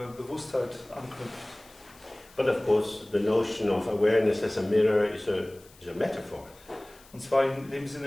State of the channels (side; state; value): left; noise; hiss, 25 dB below the sound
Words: Bewusstheit anknüpft. But of course, the notion of awareness as a mirror is a metaphor. Und zwar in dem